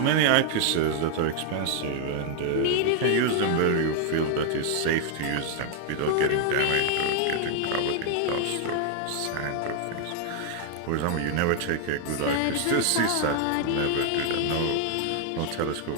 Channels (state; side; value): different; both; correlation 0.00